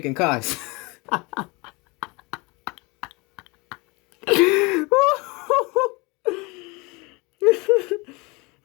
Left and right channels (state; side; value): quieter; right; 26.5 dB